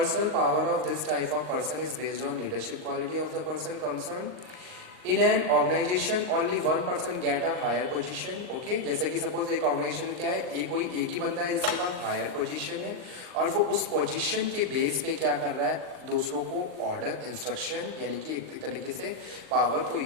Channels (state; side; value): late; left; 39 ms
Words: power of this type of person is based on leadership quality of the person concern. In an organisation only one person get a higher position. Okay, जैसे कि सपोज एक organisation में क्या है, कोई एक ही बंदा है जिसके पास हायर पोजीशन है और वो उस पोजीशन के बेस पे क्या कर रहा है, दूसरों को ऑर्डर इंस्ट्रक्शन यानी कि एक तरीके से पावर को